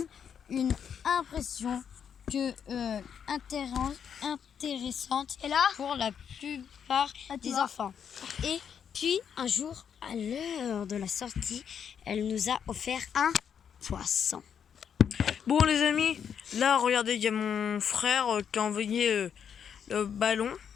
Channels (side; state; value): right; quieter; 7.8 dB